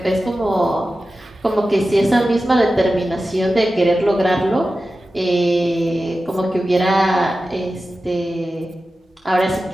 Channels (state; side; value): normal; both; correlation 0.94